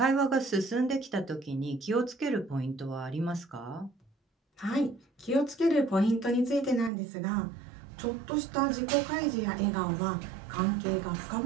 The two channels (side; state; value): left; drops out; at 6.9 s